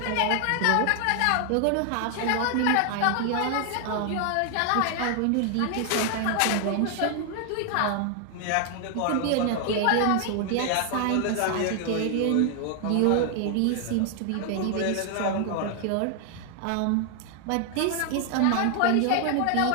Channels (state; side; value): different; both; correlation 0.00